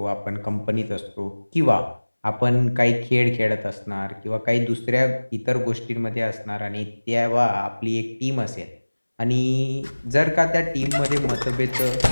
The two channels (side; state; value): both; inverted; correlation -1.00